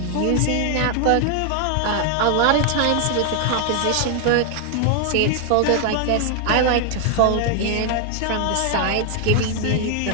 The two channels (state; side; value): different; both; correlation 0.00